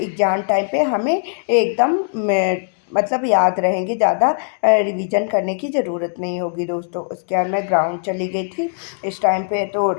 टाइम पे हमें एकदम मतलब याद रहेंगे, ज़्यादा रिवीजन करने की ज़रूरत नहीं होगी दोस्तों। उसके बाद मैं ग्राउंड चली गई थी। इस टाइम पे तो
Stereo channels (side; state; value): right; silent; digital silence